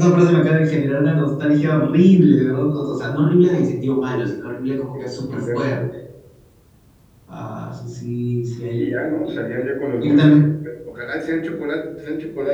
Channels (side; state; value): both; identical; correlation 1.00